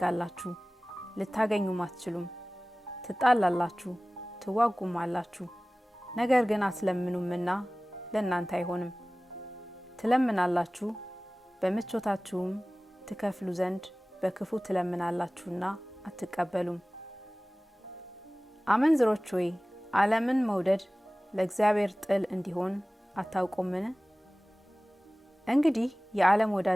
ልታገኙም አትችሉም፣ ትጣላላችሁ፣ ትዋጉማላችሁ፣ ነገር ግን አትለምኑምና ለእናንተ አይሆንም። ትለምናላችሁ፣ በምቾታችሁም ትከፍሉ ዘንድ በክፉ ትለምናላችሁና አትቀበሉም። አመንዝሮች ሆይ ዓለምን መውደድ ለእግዚአብሔር ጥል እንዲሆን አታውቁምን? እንግዲህ የዓለም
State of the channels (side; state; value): both; normal; correlation 0.98